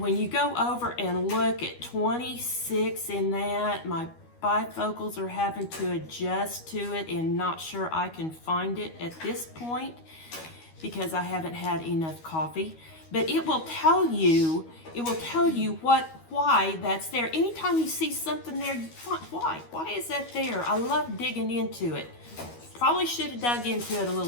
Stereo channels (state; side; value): late; right; 12 ms